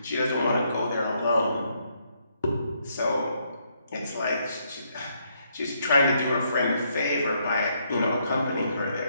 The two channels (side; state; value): both; inverted; correlation -0.74